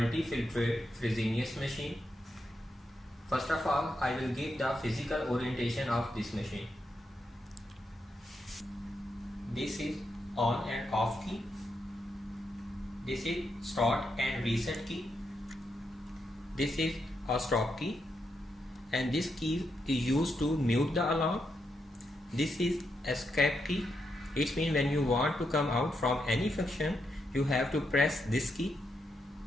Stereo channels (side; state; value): both; normal; correlation 0.83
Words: Fresenius machine. First of all, I will give the physical orientation of this machine. This is on and off key. This is start and reset key. This is a stop key, and this key is used to mute the alarm. This is escape key. It means when you want to come out from any function, you have to press this key.